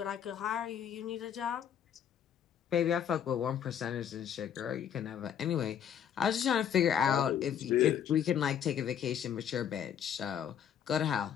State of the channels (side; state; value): right; quieter; 8.9 dB